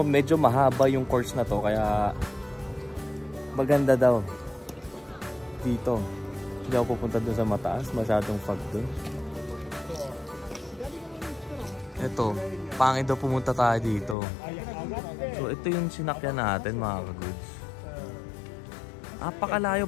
medyo mahaba yung course na to. Kaya maganda daw dito. Hindi ako pupunta dun sa mataas. Masyadong fog dun. Ito. Pangit daw pumunta tayo dito. So ito yung sinakyan natin mga kaguds. Apakalayo,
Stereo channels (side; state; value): right; drops out; at 14.2 s